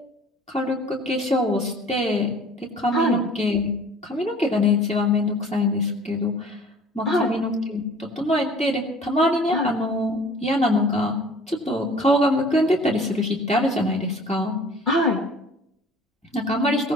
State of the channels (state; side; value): normal; both; correlation 0.49